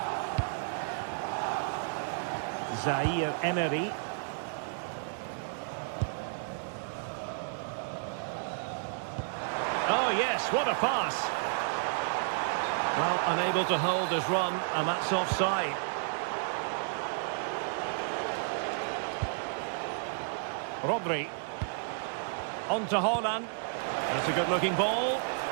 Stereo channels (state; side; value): silent; left; 56 dB below the other